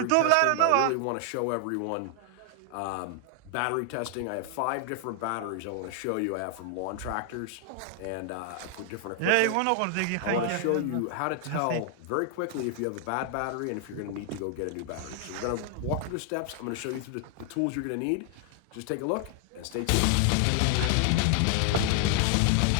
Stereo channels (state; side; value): different; both; correlation 0.00